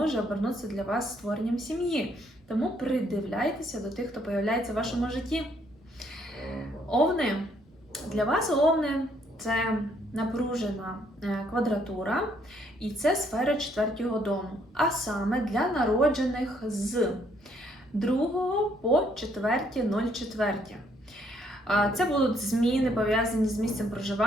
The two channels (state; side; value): normal; both; correlation 0.68